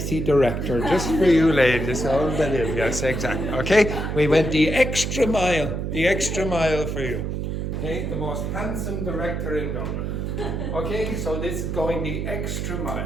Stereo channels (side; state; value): right; noise; hum, 3 dB below the sound